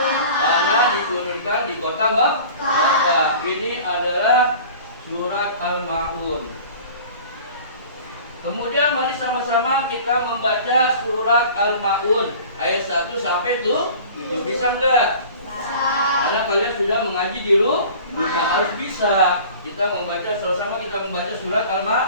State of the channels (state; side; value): inverted; both; correlation -0.43